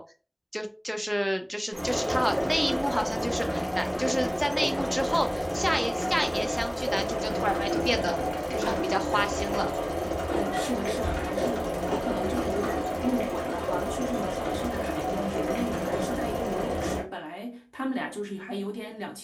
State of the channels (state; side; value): identical; both; correlation 1.00